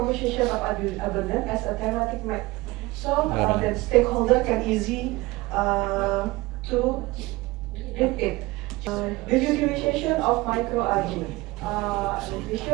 of abundance as a thematic map, so that stakeholder can easy to read it. The utilization of microalgae,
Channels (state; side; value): quieter; left; 20.9 dB